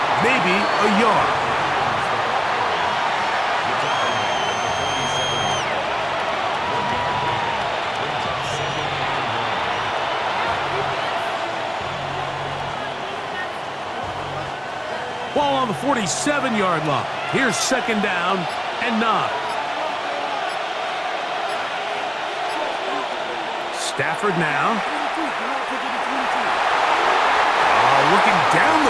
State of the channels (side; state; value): both; identical; correlation 1.00